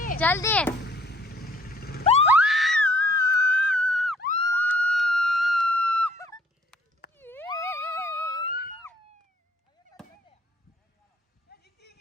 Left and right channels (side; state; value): both; normal; correlation 0.60